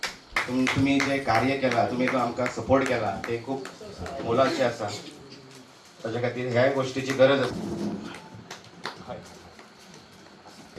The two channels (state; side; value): identical; both; correlation 1.00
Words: तुम्ही जे कार्य केला तुम्ही जो आमकां सपोर्ट केला ते खूप मोलाचे आसा ताच्या खातीर ह्या गोष्टीची गरज आसा